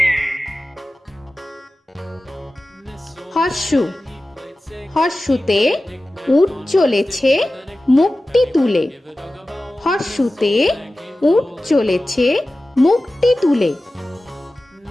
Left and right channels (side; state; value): both; normal; correlation 0.95